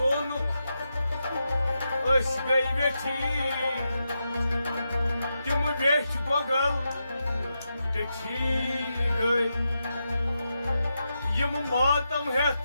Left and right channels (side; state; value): both; inverted; correlation -0.87